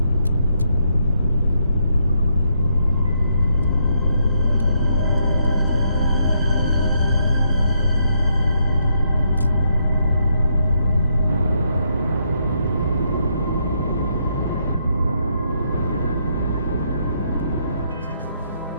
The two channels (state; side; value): inverted; both; correlation -0.76